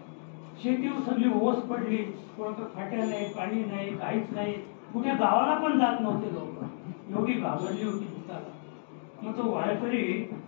शेती सगळी ओस पडली, कोणतं फाट्या नाही, पाणी नाही, काहीच नाही. कुठे गावाला पण जात नव्हते लोक, एवढी घाबरली होती भूताला. मग तो वारकरी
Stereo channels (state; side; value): silent; right; digital silence